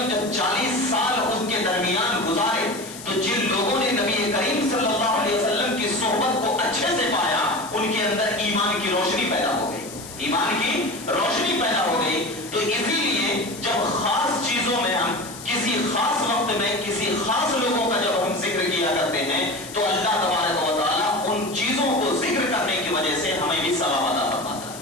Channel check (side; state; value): left; noise; hiss, 14 dB below the sound